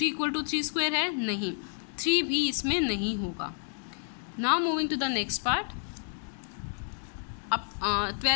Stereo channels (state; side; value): silent; right; 58 dB below the other